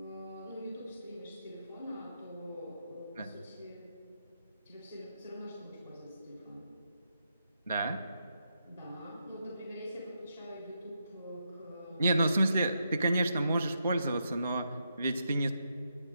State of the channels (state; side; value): inverted; both; correlation -0.82